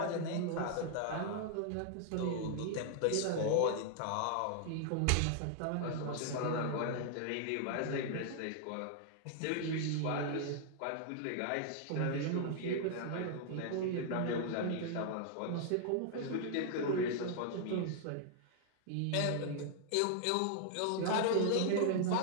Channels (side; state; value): both; different; correlation 0.00